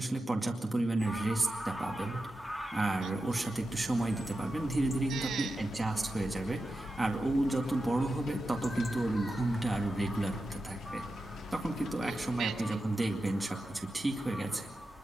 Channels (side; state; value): both; normal; correlation 0.91